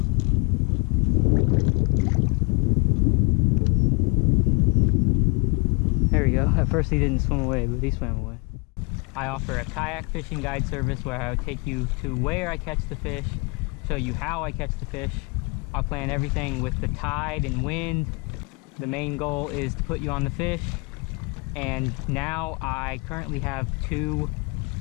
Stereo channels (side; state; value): right; quieter; 30.8 dB